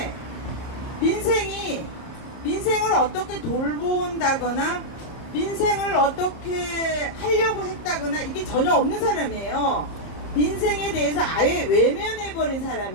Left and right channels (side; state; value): right; late; 30 ms